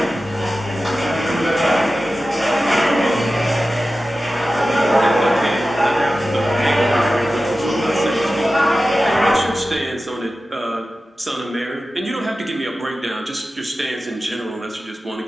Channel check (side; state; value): both; normal; correlation 0.94